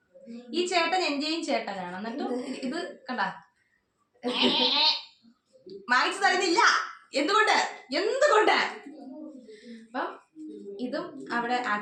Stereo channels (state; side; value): identical; both; correlation 1.00